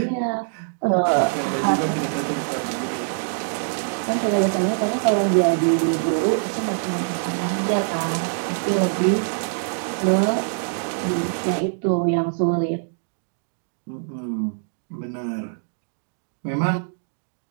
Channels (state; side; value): silent; left; digital silence